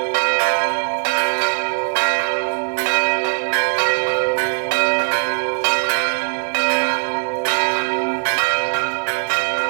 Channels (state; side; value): silent; left; digital silence